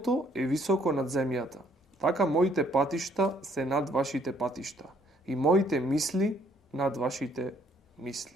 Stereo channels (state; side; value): normal; both; correlation 0.65